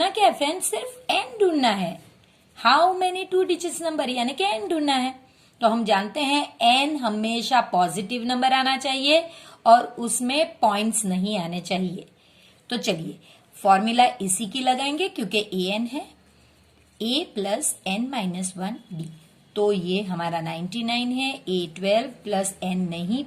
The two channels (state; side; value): identical; both; correlation 1.00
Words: क्या है फ्रेंड्स? सिर्फ N ढूंढना है। हाउ मेनी 2 डिजिट्स नंबर, यानी कि N ढूंढना है। तो हम जानते हैं N हमेशा पॉजिटिव नंबर आना चाहिए और उसमें पॉइंट्स नहीं आने चाहिए। तो चलिए फॉर्मूला इसी की लगाएंगे, क्योंकि AN है A plus N minus 1 D। तो ये हमारा 99 है, A 12 प्लस N नहीं